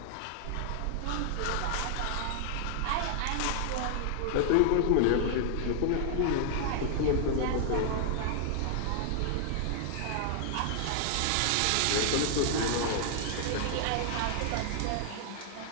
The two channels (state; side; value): different; both; correlation 0.00